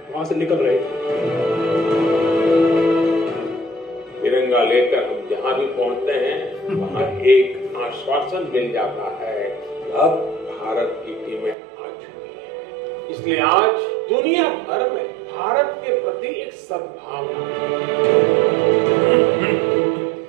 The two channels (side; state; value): left; drops out; at 11.6 s